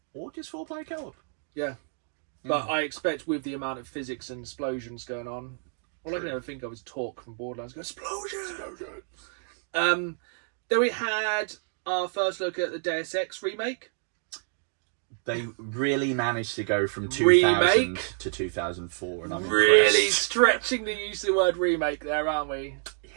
Or just 4-player co-op. Yeah. But I expect with the amount of physics and explosions going on, all I can ever think of is Talk from Borderlands going, explosion! Then we had our first look at the Deus Ex remake. They really managed to go from 2000 to 2004, and I'm really impressed. stretching the use of the word remake there, aren't we?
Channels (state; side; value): silent; left; 59 dB below the other